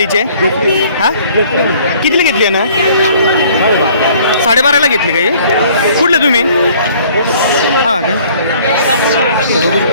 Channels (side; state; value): both; inverted; correlation -0.56